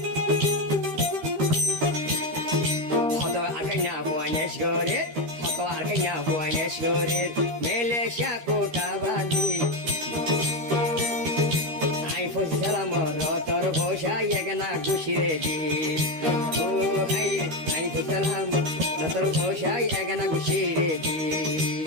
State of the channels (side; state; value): left; late; 13 ms